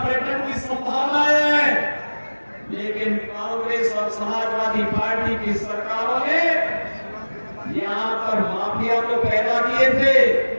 की संभावनाएं हैं। लेकिन कांग्रेस और समाजवादी पार्टी की सरकारों ने यहाँ पर माफिया तो पैदा किए थे,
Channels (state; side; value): inverted; both; correlation -1.00